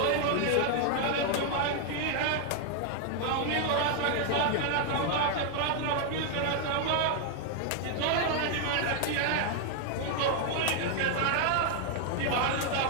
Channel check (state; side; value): different; both; correlation 0.00